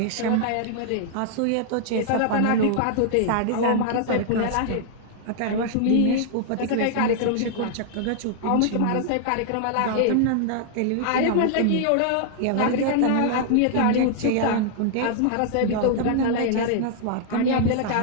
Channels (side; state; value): both; different; correlation 0.00